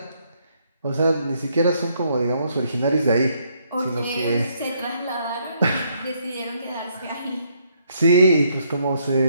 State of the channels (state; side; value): inverted; both; correlation -0.71